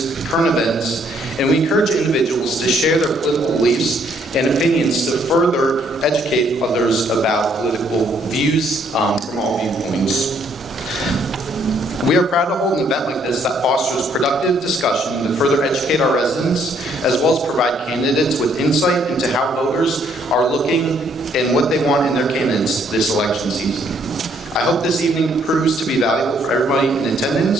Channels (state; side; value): normal; both; correlation 0.67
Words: current events, and we encourage individuals to share their political beliefs and opinions to further educate others about political views from all viewpoints. We are proud to hold an event like this that fosters productive discussion to further educate our residents, as well as provide candidates with insight into how voters are looking and what they want in their candidates this election season. I hope this evening proves to be valuable for everybody in